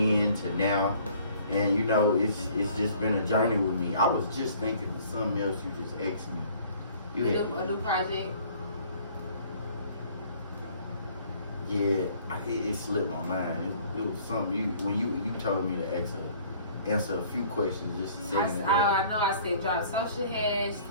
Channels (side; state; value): both; inverted; correlation -0.55